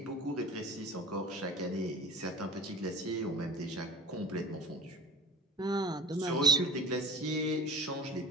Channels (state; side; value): normal; both; correlation 0.38